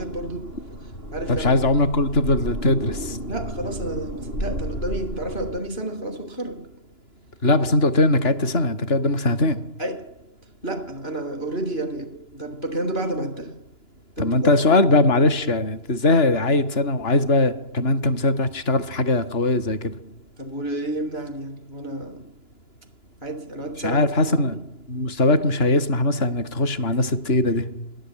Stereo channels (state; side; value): late; right; 2.9 ms